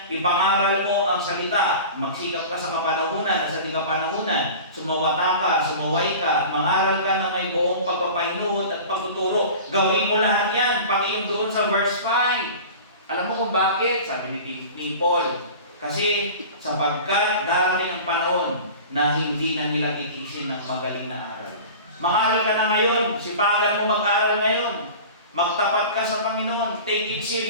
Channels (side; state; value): both; inverted; correlation -0.37